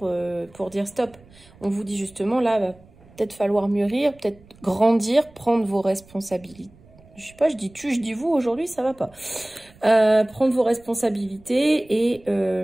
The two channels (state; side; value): noise; right; rumble, 26 dB below the sound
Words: dire stop. On vous dit justement, là, va peut-être falloir mûrir, peut-être grandir, prendre vos responsabilités. Je sais pas, je dis tu, je dis vous, aujourd'hui, ça va pas. Prendre vos responsabilités